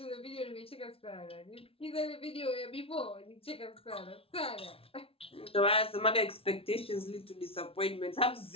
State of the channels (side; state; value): right; late; 0.27 ms